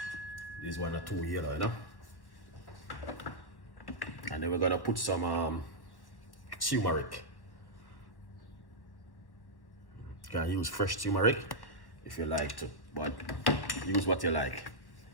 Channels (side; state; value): right; late; 1.1 ms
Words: This one are too yellow, you know. And then we're gonna put some turmeric. You can use fresh turmeric if you like to, but use what you like.